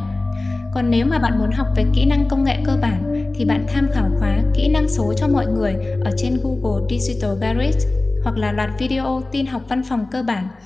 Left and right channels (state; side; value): quieter; right; 3.0 dB